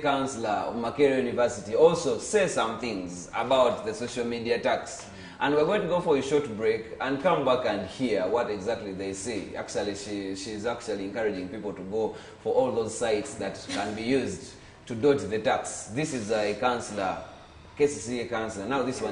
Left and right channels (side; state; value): both; identical; correlation 1.00